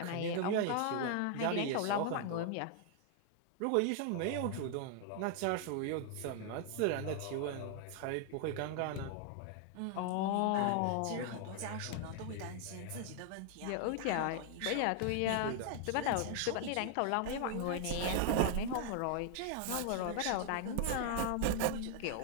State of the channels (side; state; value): both; different; correlation 0.00